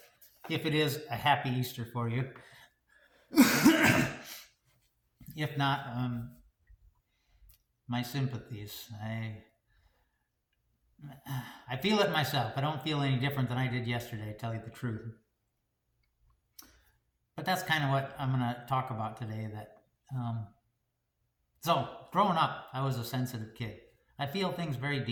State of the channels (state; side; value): identical; both; correlation 1.00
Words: If it is a happy Easter for you. If not, my sympathies. I feel it myself. I don't feel any different than I did yesterday, to tell you the truth. But that's kind of what I'm going to talk about today. So, growing up, I was a sensitive kid. I feel things very